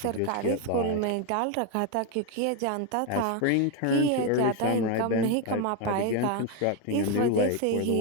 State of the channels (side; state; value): both; different; correlation 0.01